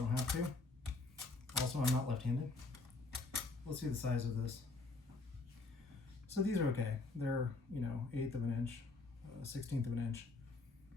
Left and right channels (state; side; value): quieter; right; 3.5 dB